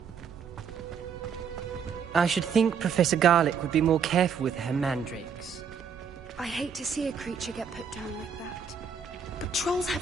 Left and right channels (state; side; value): quieter; left; 6.6 dB